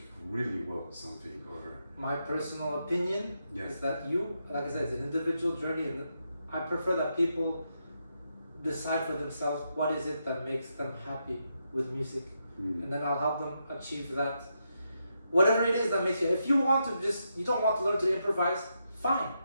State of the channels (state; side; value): inverted; both; correlation -0.82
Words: really well something? Or My personal opinion is that like I said, it's an individual journey, and I prefer that people decide for themselves what is it that makes them happy with music, and then I'll help them achieve that. Whatever it is that makes you, if you don't want to learn to improvise, fine.